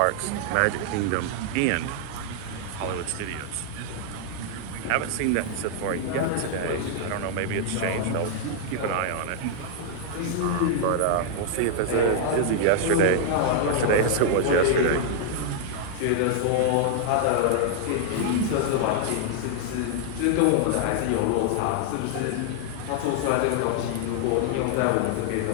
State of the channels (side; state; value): both; different; correlation -0.01